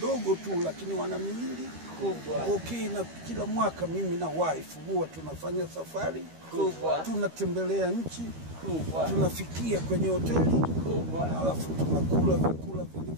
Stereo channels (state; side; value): late; left; 13 ms